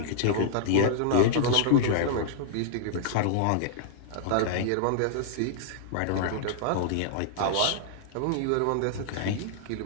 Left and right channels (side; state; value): both; different; correlation -0.01